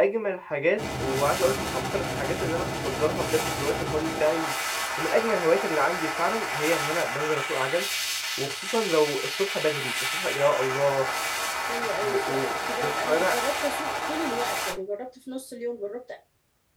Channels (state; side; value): identical; both; correlation 1.00